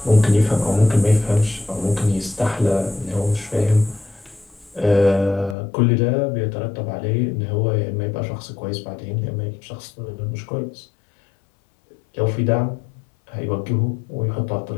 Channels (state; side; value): drops out; right; at 5.6 s